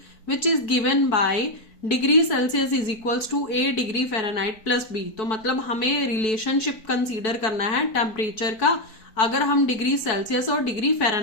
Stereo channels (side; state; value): right; late; 4.6 ms